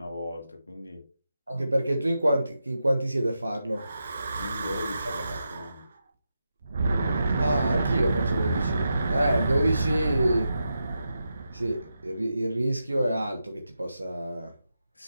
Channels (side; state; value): both; inverted; correlation -0.87